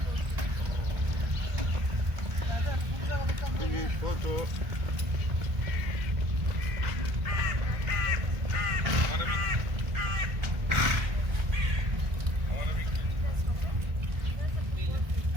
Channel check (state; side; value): late; left; 1.7 ms